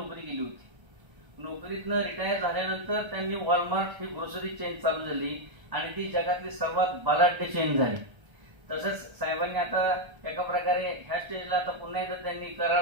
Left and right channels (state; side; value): late; left; 1.3 ms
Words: केली होती. नोकरीतनं रिटायर झाल्यानंतर त्यांनी वॉलमार्ट ही ग्रोसरी चेन चालू झाली आणि ती जगातली सर्वात बलाढ्य चेन झाली. तसंच साहेबांनी आता एका प्रकारे ह्या स्टेजला आता पुन्हा एकदा त्यांनी